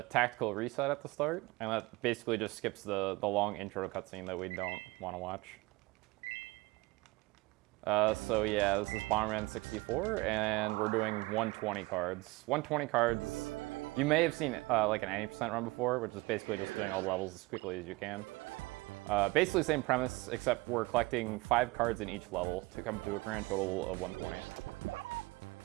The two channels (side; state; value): left; quieter; 22.7 dB